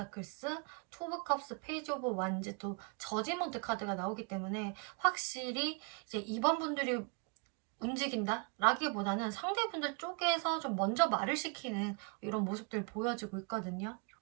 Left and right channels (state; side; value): quieter; left; 35.3 dB